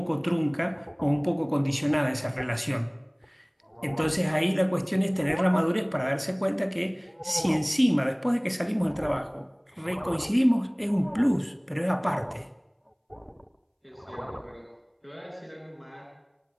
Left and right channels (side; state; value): both; identical; correlation 1.00